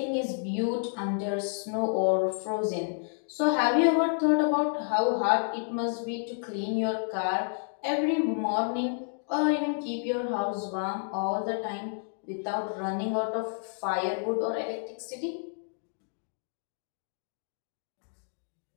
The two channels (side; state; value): right; silent; digital silence